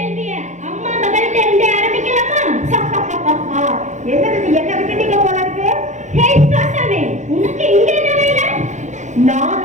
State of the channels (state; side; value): late; left; 0.35 ms